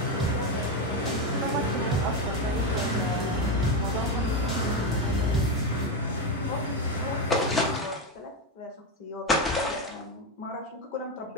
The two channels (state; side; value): normal; both; correlation 0.11